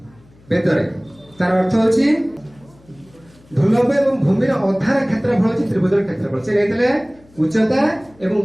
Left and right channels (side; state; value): left; noise; hum, 28 dB below the sound